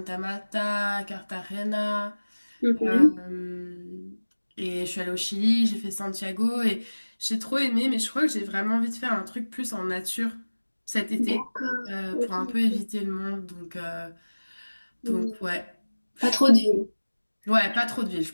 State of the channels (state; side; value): inverted; both; correlation -1.00